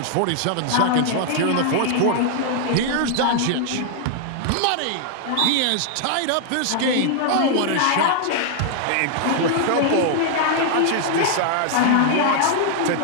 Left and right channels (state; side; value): different; both; correlation 0.00